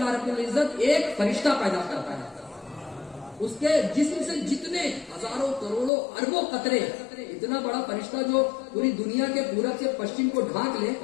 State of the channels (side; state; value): right; drops out; at 5.9 s